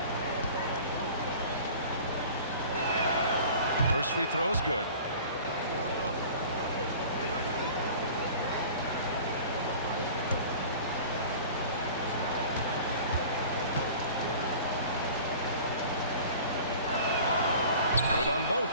First free throw is good. Good on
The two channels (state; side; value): inverted; both; correlation -0.43